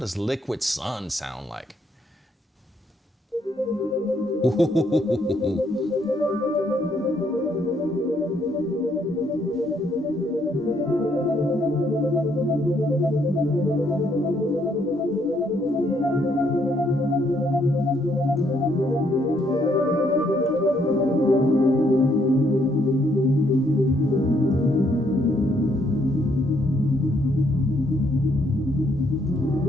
Liquid Sun sound like?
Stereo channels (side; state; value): both; normal; correlation 0.71